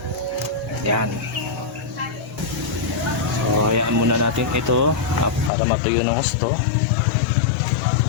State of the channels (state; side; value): drops out; right; at 5.5 s